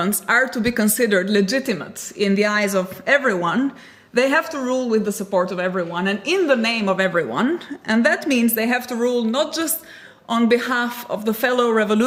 are to be considered legitimate in the eyes of everyone, they have to rule with the support of everyone and in the name of everyone. And that means they have to rule not just on behalf of the fellow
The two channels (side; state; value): both; identical; correlation 1.00